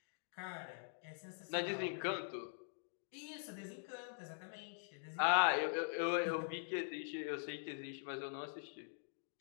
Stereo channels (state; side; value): silent; right; digital silence